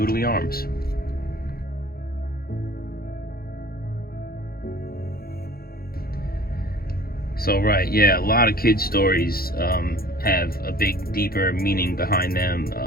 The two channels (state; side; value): late; right; 0.44 ms